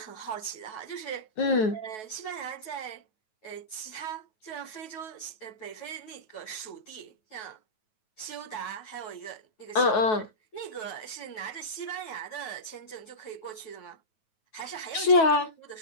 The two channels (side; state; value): right; late; 9.2 ms